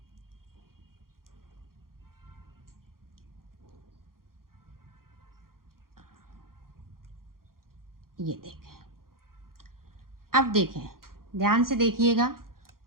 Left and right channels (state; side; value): late; left; 0.92 ms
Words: ये देखें अब देखें ध्यान से देखिएगा